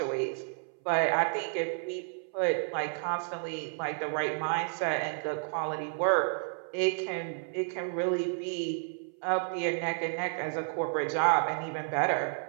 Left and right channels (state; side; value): silent; left; 57 dB below the other